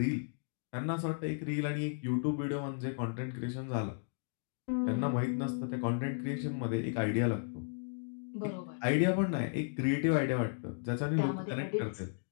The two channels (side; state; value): right; silent; digital silence